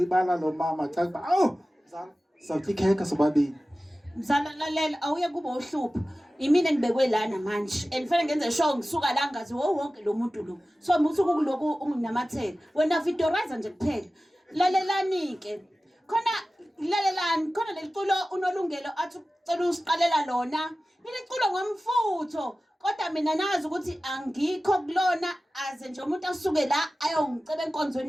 lo mama xa kuba awu mzala sizawutya ikhekhe sobabini mzala lalela awuye kuba uhlupha imina ngibekwe lana manje and fanele ngenze sure ngisuka la ngazi wonke lo muntu lo so musuku kuloku unginamathela wena vidorizer nje kuphela lalelani ke khona lalelani khona leliculo unolungelo athi ucela usiqalela lona leliculo ngomfutho kodwa mina nazi ukuthi angikho kulona aze nje umuntu asuke la ayongiceba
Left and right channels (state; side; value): normal; both; correlation 0.96